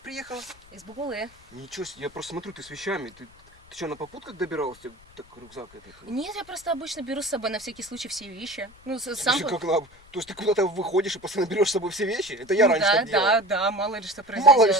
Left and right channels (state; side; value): noise; left; rumble, 26 dB below the sound